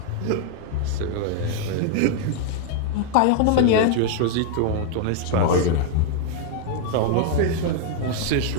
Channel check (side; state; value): both; different; correlation 0.00